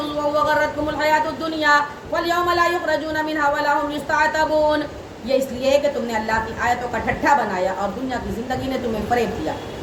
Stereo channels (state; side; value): identical; both; correlation 1.00